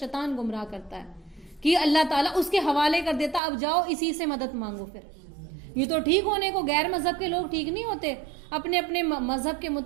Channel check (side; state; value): left; drops out; at 3.4 s